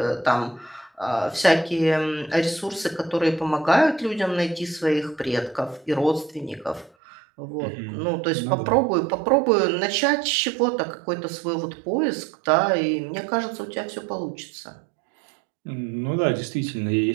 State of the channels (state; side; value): drops out; left; at 6.9 s